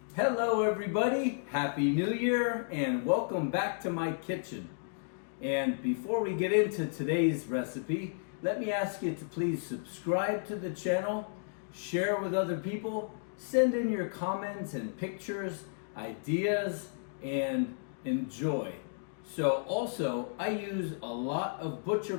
Hello everybody, Happy New Year and welcome back to my kitchen. And before we get into today's recipe, let me ask you to please subscribe to the channel, share with other people, send in your comments and pictures, ideas, and enjoy. So also, I use a lot of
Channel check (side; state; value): right; silent; digital silence